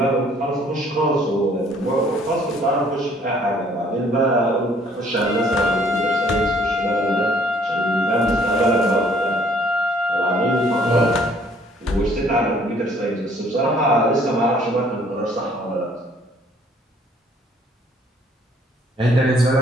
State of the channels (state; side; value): normal; both; correlation 0.60